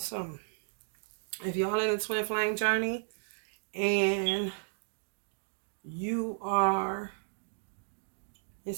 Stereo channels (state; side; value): silent; left; digital silence